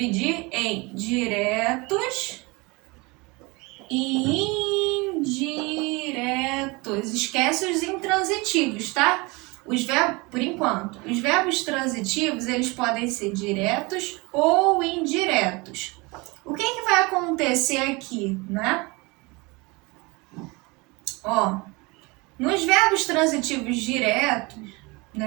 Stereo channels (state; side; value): quieter; left; 25.8 dB